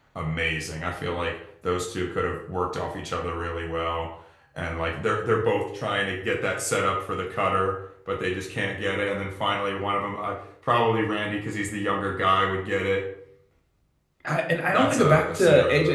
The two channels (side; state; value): both; identical; correlation 1.00